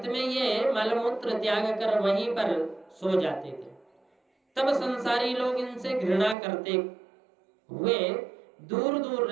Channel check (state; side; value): drops out; left; at 6.4 s